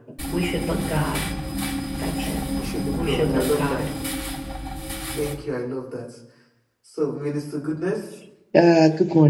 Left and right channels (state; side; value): identical; both; correlation 1.00